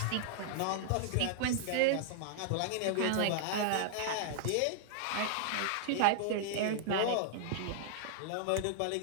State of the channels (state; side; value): different; both; correlation -0.01